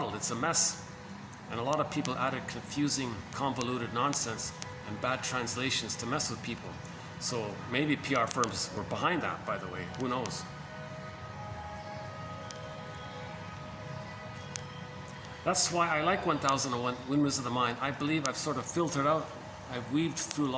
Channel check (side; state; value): both; identical; correlation 1.00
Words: it's a mess. And a lot of people added confusing, convoluted nonsense and bad translations to mess with people. So maybe PR firms were behind that, by the way. Who knows? That's why I like 1001 Windmills of the Mind. I believe I've sort of filtered out, I've weaved through a